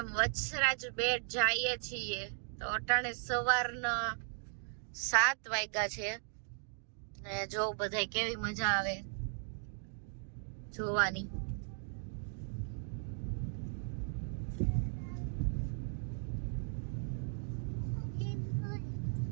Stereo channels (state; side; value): silent; left; 53 dB below the other